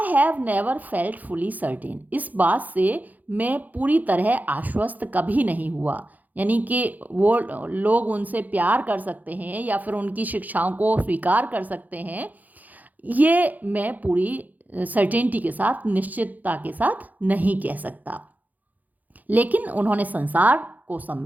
have never felt fully certain, इस बात से मैं पूरी तरह आश्वस्त कभी नहीं हुआ, यानी कि वो लोग उनसे प्यार कर सकते हैं या फिर उनकी शिक्षाओं को स्वीकार कर सकते हैं, ये मैं पूरी सर्टेनिटी के साथ, निश्चितता के साथ नहीं कह सकता। लेकिन उन्होंने संसार को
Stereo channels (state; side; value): late; left; 0.081 ms